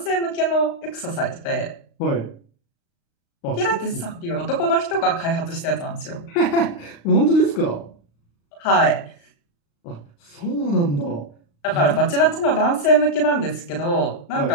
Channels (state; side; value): late; right; 35 ms